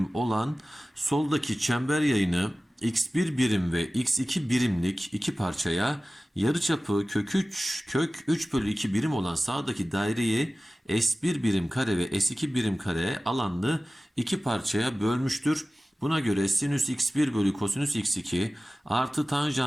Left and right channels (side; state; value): both; normal; correlation 0.96